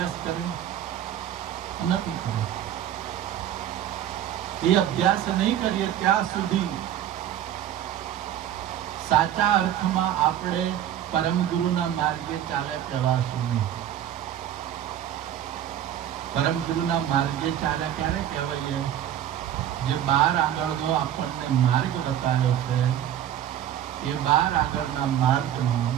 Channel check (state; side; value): quieter; left; 10.9 dB